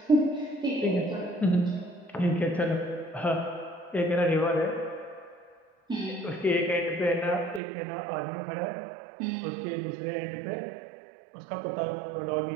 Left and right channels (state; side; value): drops out; left; at 7.6 s